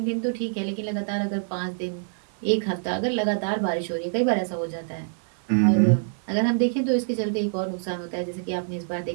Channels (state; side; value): silent; left; 57 dB below the other